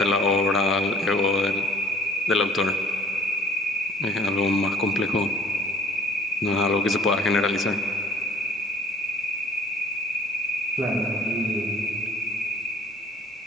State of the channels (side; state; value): both; normal; correlation 0.54